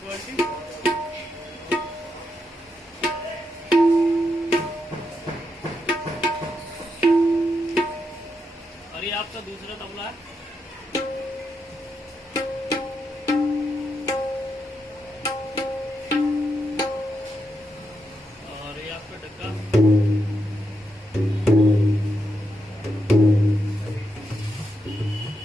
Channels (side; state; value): both; normal; correlation 0.83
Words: क्वालिटी। और ये आपका दूसरा तबला है। और ये आपका डक्का।